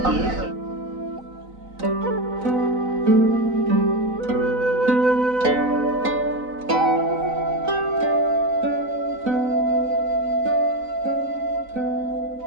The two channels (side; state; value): left; late; 4.0 ms